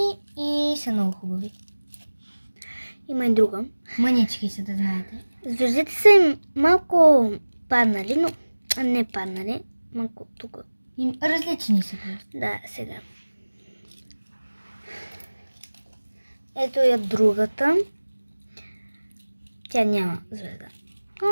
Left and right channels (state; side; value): inverted; both; correlation -1.00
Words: и са много хубави. Има и друга. Мънички са, да знаете. Звездите са им малко паднали, но не паднали. Малко тук. Различни са просто. Да, сега. Ето я другата. Тя няма звезда.